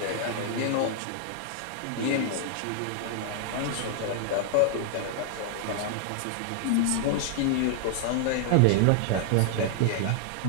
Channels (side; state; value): both; different; correlation 0.00